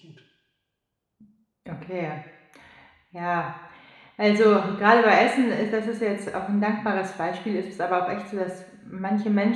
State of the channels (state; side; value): identical; both; correlation 1.00